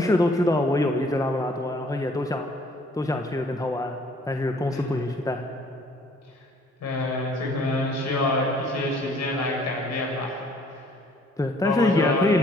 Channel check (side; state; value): both; normal; correlation 0.59